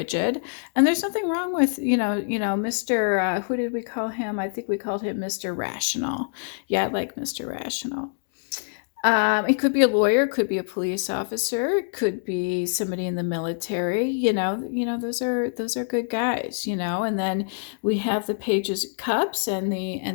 and there's nothing wrong with Mr. Who did we call him? I think we called him Mr. Rational. Yeah, I like Mr. Rational. It could be a lawyer, could be a police officer, could be somebody in the military. Those are good guys. And then we have the Pages of Cups and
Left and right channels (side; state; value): right; silent; digital silence